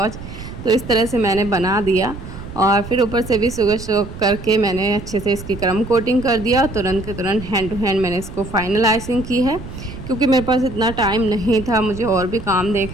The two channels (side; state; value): right; noise; rumble, 12 dB below the sound